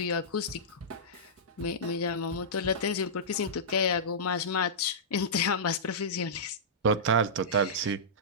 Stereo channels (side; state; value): both; normal; correlation -0.16